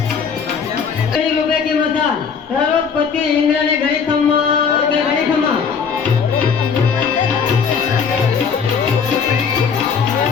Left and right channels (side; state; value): right; quieter; 6.3 dB